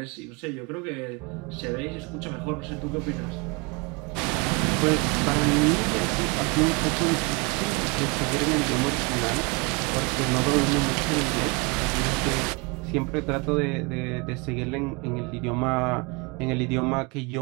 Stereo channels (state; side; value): quieter; left; 29.3 dB